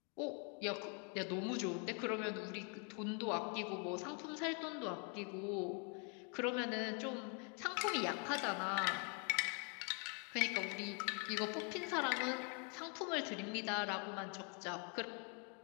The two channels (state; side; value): quieter; right; 38.1 dB